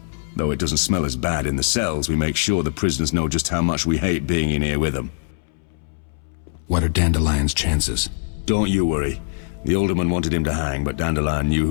Though it doesn't smell as bad in the cells, we make sure the prisoners know just how much we hate being in here with them. What are Dandelion's chances? Don't you worry. The alderman wanted him to hang, but Dandelion knew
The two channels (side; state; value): right; silent; 64 dB below the other